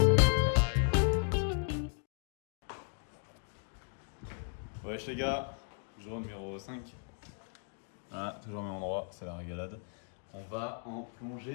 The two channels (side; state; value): right; silent; 54 dB below the other